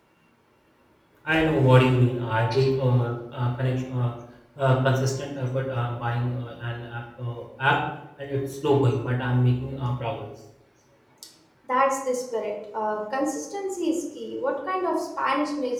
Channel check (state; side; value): identical; both; correlation 1.00